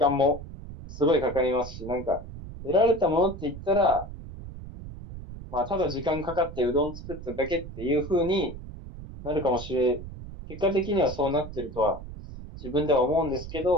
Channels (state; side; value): noise; right; rumble, 12 dB below the sound